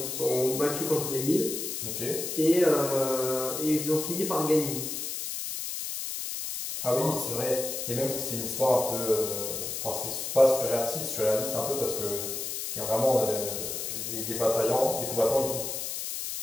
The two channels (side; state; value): left; noise; hiss, 4 dB below the sound